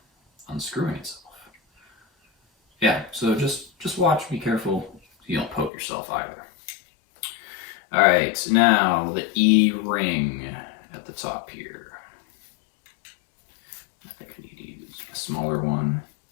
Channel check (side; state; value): right; drops out; at 5.7 s